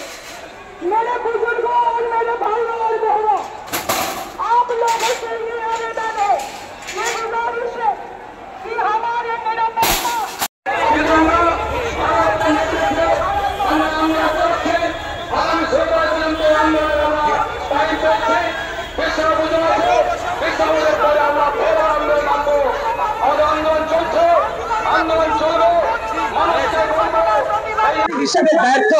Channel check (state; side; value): identical; both; correlation 1.00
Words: मेरे बुजुर्गों और मेरे भाइयों और बहनों, आप लोगों से ये आवेदन है, ये गुजारिश है कि हमारे निरपेक्षता হিসেবে ব্যর্থ